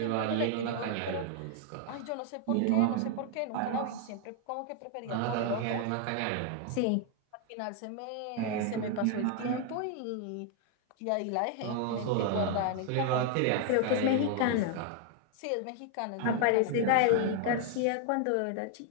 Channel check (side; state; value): both; different; correlation 0.00